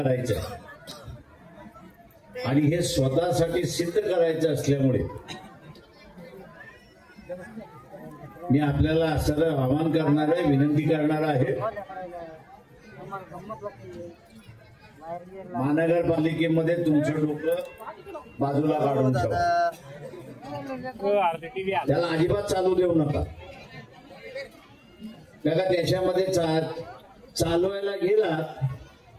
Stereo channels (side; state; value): both; identical; correlation 1.00